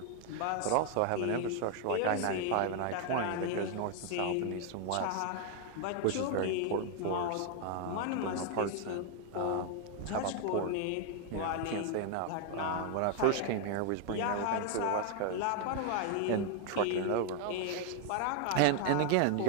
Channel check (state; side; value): different; both; correlation 0.00